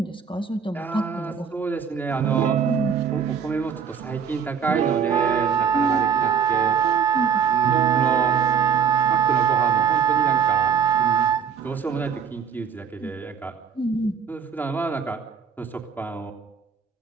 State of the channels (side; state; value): left; quieter; 7.0 dB